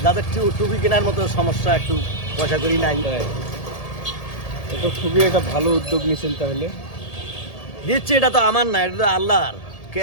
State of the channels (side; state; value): right; late; 1.8 ms